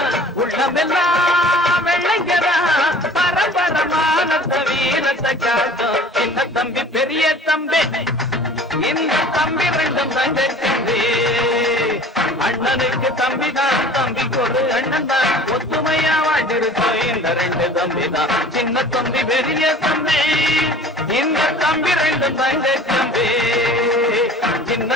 உள்ளமெல்லாம் வெள்ளைங்கதா. பரம்பரமானத்த வீரத்தை காட்டும் சின்ன தம்பி பெரிய தம்பி. இந்த தம்பி ரெண்டும் தங்க தம்பி. அண்ணனுக்கு தம்பிதான் தம்பிக்கு ஒரு அண்ணன் தான். ஒத்துமையா வாழ்ந்திருக்கும் இந்த ரெண்டு தம்பி தான். சின்ன தம்பி பெரிய தம்பி இந்த தம்பி ரெண்டும் தங்க தம்பி.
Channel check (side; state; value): both; normal; correlation 0.45